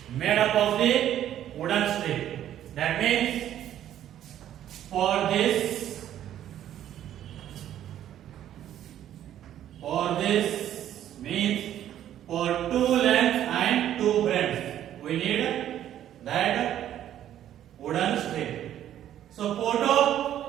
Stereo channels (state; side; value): quieter; left; 11.4 dB